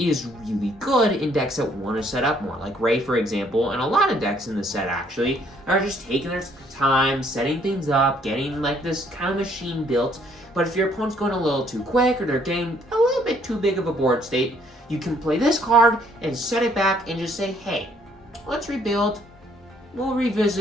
really good in decks that want to set up more. Like Ray, for example, and a lot of decks in the set actually are just taking their time, setting things up, getting like this kind of machine built. But if your opponent's going a little too quick or they're getting a little bit too big of a board state, you can play this card and set it back and just say, hey, let's rebuild. We'll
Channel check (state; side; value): normal; both; correlation 0.65